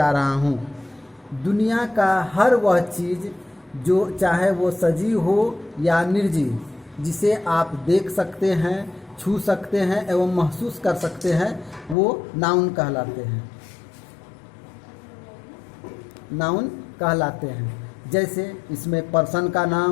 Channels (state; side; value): drops out; right; at 12.0 s